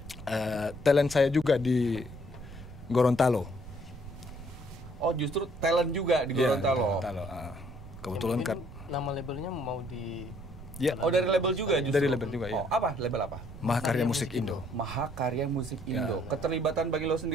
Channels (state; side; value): noise; right; rumble, 15 dB below the sound